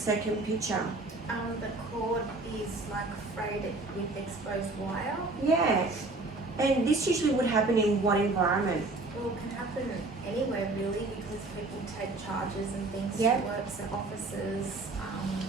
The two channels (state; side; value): quieter; left; 3.2 dB